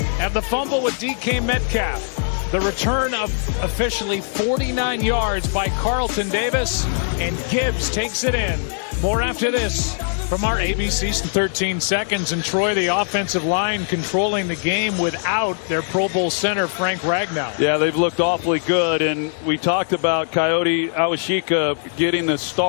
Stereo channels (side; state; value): right; silent; digital silence